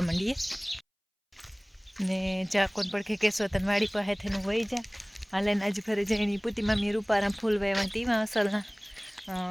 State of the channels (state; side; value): identical; both; correlation 1.00